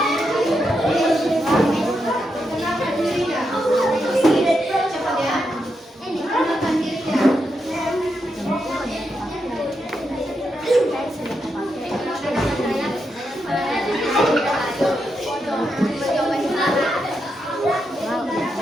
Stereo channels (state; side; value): normal; both; correlation 0.84